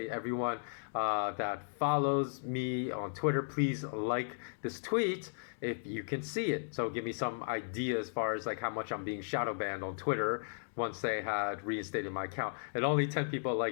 everyone that follows me on Twitter, please like this tweet if you can see it. So give me some idea as far as like how much I'm being shadow banned on Twitter once they had reinstated my account. And only 10 people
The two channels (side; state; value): right; silent; digital silence